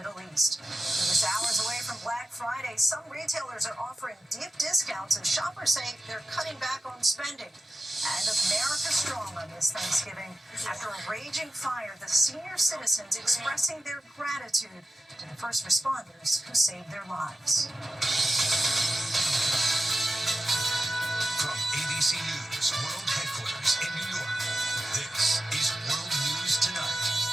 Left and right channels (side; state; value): both; normal; correlation 0.92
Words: East. We're just hours away from Black Friday. Some retailers are offering deep discounts, and shoppers say they're cutting back on spending. And America strong on this Thanksgiving. After a raging fire, the senior citizens expressing their gratitude to the first responders who saved their lives. From ABC News World Headquarters in New York, this is World News Tonight